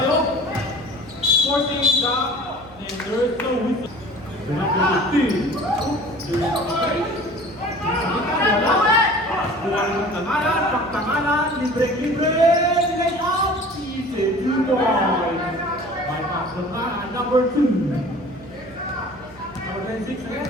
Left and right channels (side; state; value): right; noise; hum, 24 dB below the sound